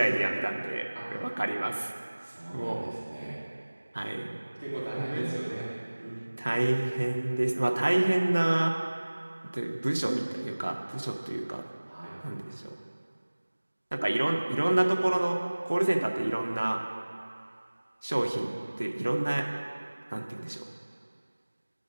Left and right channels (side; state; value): both; inverted; correlation -1.00